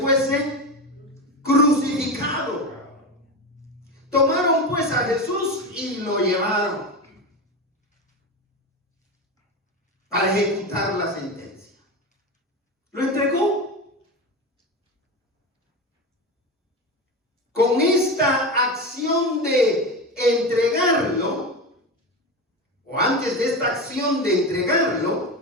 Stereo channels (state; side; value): normal; both; correlation 0.21